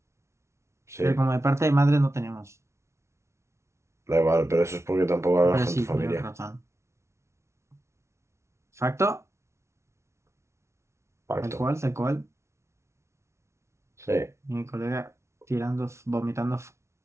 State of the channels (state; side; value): late; left; 0.13 ms